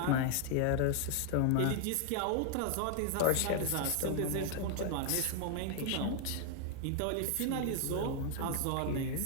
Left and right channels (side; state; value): both; different; correlation 0.00